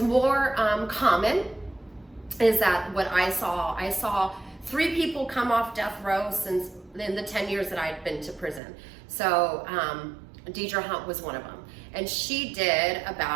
more common is that what I saw 3 people come off death row since in the 10 years that I'd been to prison. So Deirdre Hunt was one of them, and she did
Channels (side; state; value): left; drops out; at 8.6 s